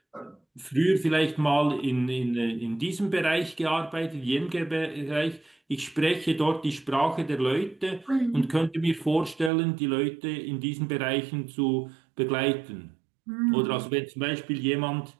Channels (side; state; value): left; drops out; at 9.5 s